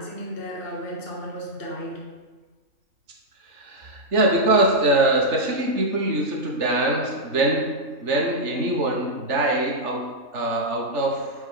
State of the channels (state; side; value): late; left; 3.4 ms